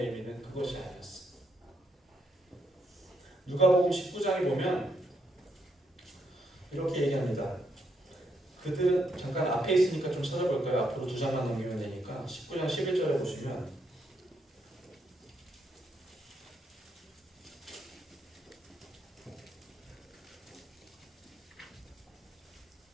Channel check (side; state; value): both; normal; correlation 0.77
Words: 의미는 그것이 아니었어요. 누가복음 19장에 보면 이렇게 얘기합니다. 그들은 잠깐 앞에 있으니까 좀 찾아볼까요? 앞으로 2장만 넘기면 되니까 19장 11절에 보시면